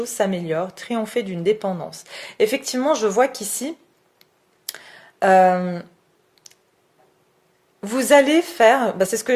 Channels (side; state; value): both; identical; correlation 1.00